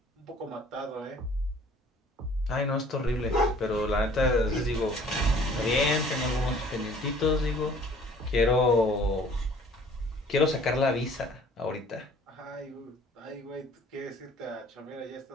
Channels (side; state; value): both; normal; correlation 0.53